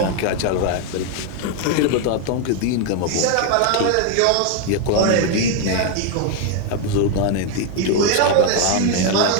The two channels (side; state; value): both; different; correlation 0.01